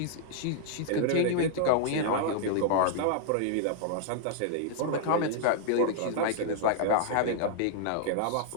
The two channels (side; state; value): both; different; correlation -0.01